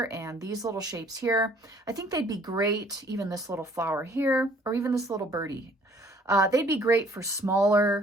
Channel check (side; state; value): both; normal; correlation 0.58